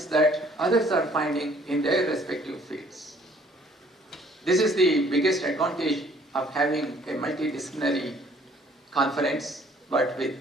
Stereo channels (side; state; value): both; normal; correlation 0.59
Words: that others are finding in their respective fields. This is the biggest advantage of having a multidisciplinary conference, but